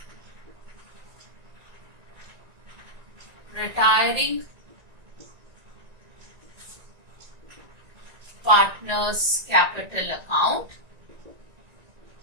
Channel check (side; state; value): left; late; 1.9 ms